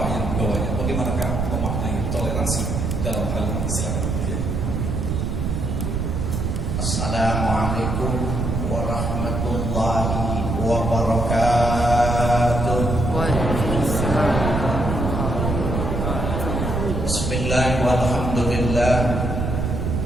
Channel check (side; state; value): right; noise; rumble, 1 dB below the sound